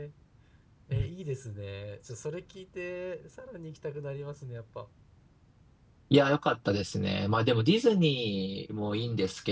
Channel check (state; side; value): identical; both; correlation 1.00